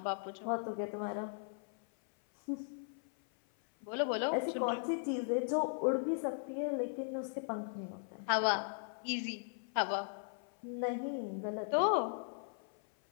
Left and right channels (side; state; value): right; silent; 52 dB below the other